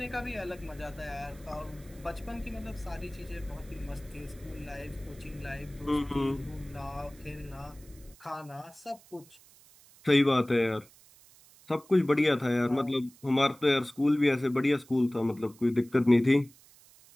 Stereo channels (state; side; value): noise; right; hiss, 25 dB below the sound